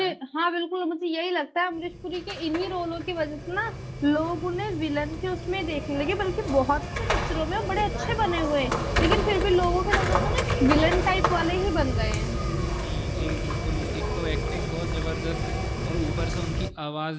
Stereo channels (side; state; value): both; identical; correlation 1.00